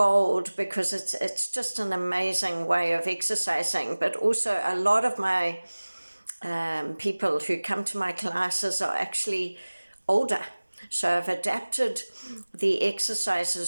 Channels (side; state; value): both; inverted; correlation -1.00